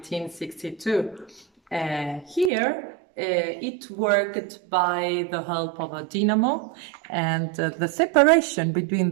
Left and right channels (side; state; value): left; drops out; at 2.5 s